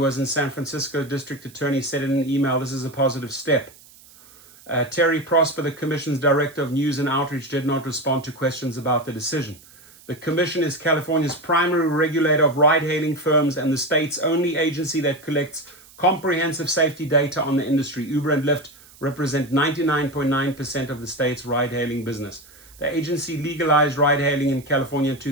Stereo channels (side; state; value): right; noise; hiss, 24 dB below the sound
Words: in San Francisco, District Attorney said in an email, this is a positive step. Terry Prosper, the Commission's Director of News and Outreach, did not respond to questions about the decision. The Commission is California's primary regulator of ride-hailing firms and the state's only agency that collects comprehensive safety data on the industry. Uber and Lyft represent 99.9% of the state's ride-hailing business. The agency legalized ride-hailing in California in